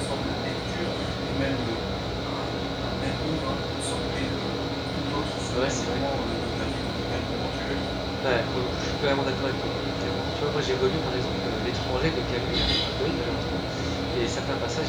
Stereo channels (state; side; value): identical; both; correlation 1.00